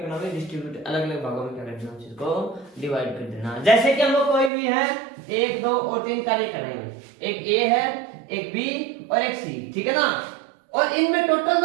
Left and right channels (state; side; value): drops out; left; at 4.5 s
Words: भाई, डिस्ट्रीब्यूट अलग अलग भागों में क्या कर देना, चीज को डिवाइड कर देना। जैसे कि हम लोग कोई भी है 1, 2 और 3 कार्य कर रहे हैं, एक ए है, एक बी और एक सी, ठीक है ना। और इनमें टोटल